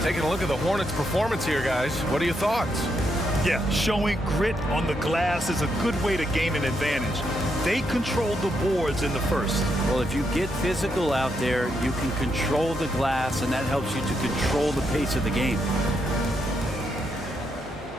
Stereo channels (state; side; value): normal; both; correlation 0.79